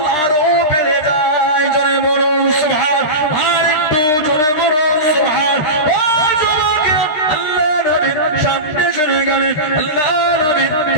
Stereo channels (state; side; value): late; right; 13 ms